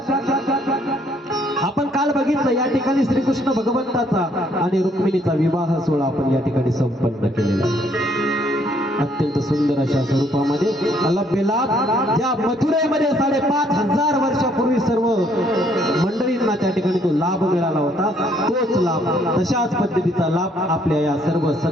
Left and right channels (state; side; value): normal; both; correlation 0.66